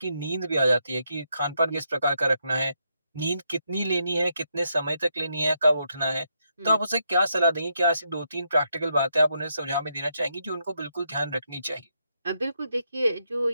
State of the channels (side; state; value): both; inverted; correlation -0.79